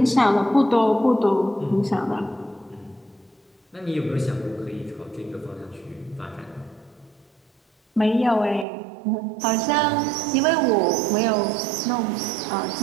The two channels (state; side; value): drops out; left; at 8.7 s